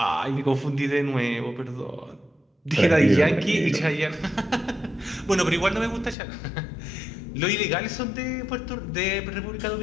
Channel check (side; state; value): right; drops out; at 6.2 s